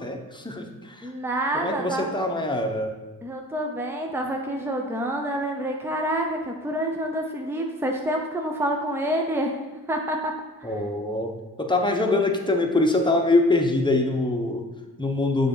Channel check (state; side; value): normal; both; correlation 0.47